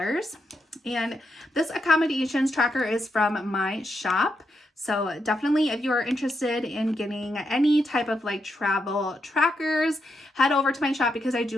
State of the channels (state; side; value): normal; both; correlation 0.83